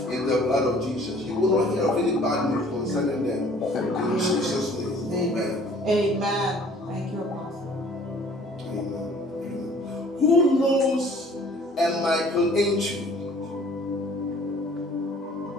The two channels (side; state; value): both; normal; correlation 0.53